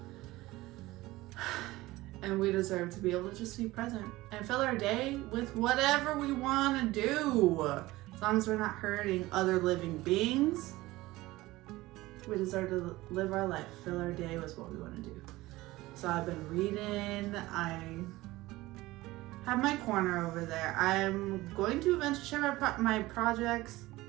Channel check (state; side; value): quieter; left; 18.7 dB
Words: And we deserve to be able to just be present and fill our day with whatever we want to do. As long as we're not hurting other living beings, we deserve to live our life, fill our day with what we want to do. So I've been reading. I have my corner over there. I'm going to eventually share my projects